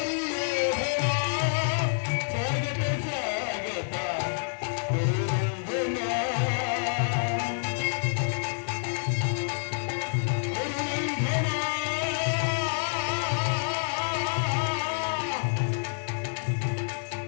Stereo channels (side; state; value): right; silent; digital silence